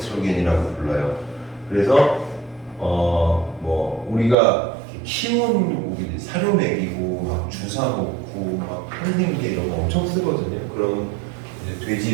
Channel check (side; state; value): left; drops out; at 4.4 s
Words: 불러요. 그래서 뭐 우리가 키우는 고기들 사료 먹이고 막 주사 놓고 막 한생제 이런 거 엄청 쓰거든요. 그런 이제